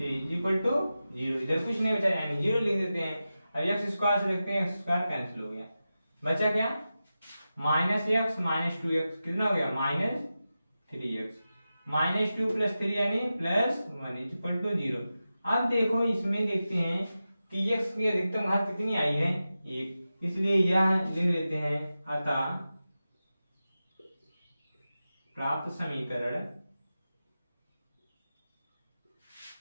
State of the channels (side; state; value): both; inverted; correlation -0.93